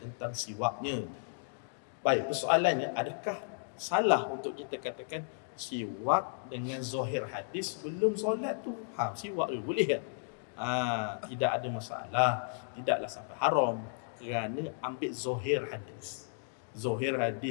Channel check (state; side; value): silent; right; digital silence